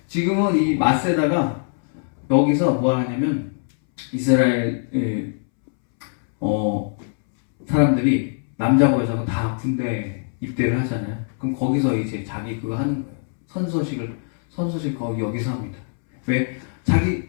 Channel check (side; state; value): right; silent; 64 dB below the other